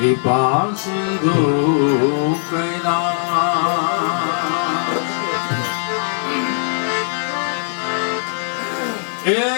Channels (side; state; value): right; silent; 66 dB below the other